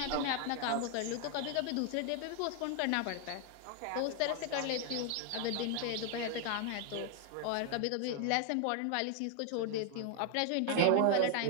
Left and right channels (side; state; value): both; different; correlation 0.00